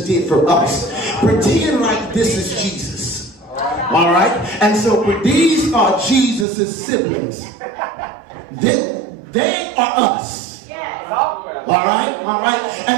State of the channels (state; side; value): drops out; left; at 6.5 s